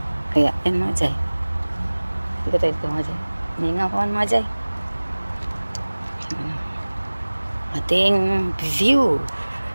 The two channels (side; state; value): both; inverted; correlation -1.00